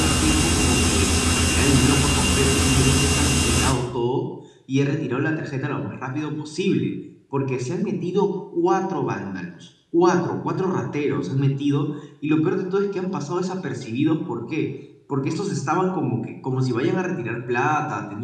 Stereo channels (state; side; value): identical; both; correlation 1.00